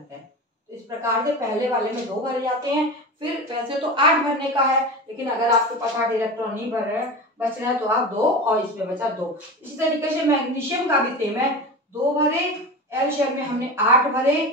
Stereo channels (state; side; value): normal; both; correlation 0.27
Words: हैं। तो इस प्रकार से पहले वाले में 2 भरे जाते हैं। फिर वैसे तो 8 भरने का है, लेकिन अगर आपके पास 8 इलेक्ट्रॉन नहीं भर रहे बच रहा है तो आप 2 और इसमें बचा 2। इसी तरीके से मैग्नीशियम का भी सेम है, 2 भरे, L शेल में हमने 8